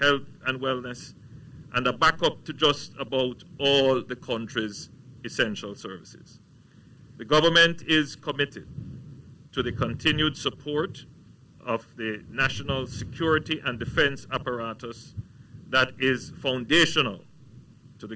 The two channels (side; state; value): both; identical; correlation 1.00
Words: health and wellness, and a backup to just about all the country's essential services. The government is committed to the continued support of the national security and defense apparatus that is foundational to